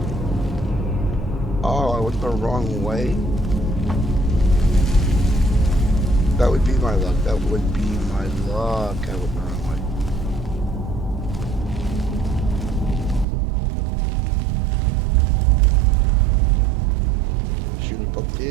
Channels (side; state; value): left; drops out; at 13.2 s